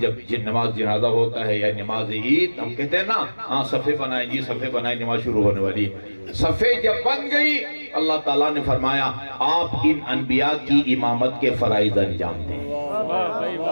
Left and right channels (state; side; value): inverted; both; correlation -1.00